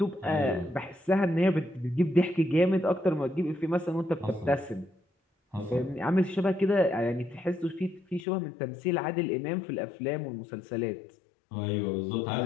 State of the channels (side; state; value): right; drops out; at 8.2 s